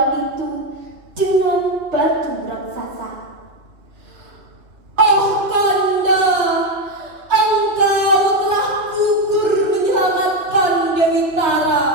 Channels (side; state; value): left; late; 2.8 ms